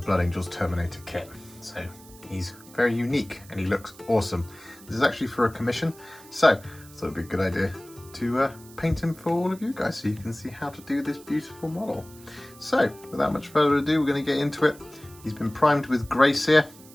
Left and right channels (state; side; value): noise; right; hiss, 22 dB below the sound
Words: Blood Angels Terminator kit. So he's very unique and he looks awesome. This is actually for a commission, so I thought it'd be a good idea to paint him for all of you guys so you can see how to do this beautiful model. So without much further ado, we're going to get into it. He's been primed with Grey Seer,